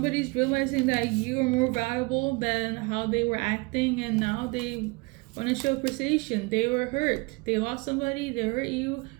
realizing that you are more valuable than how they were acting, and now they want to show appreciation. They were hurt. They lost somebody. They hurt you.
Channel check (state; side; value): quieter; left; 27.7 dB